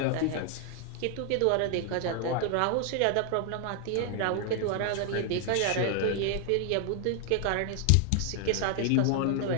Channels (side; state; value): both; different; correlation 0.00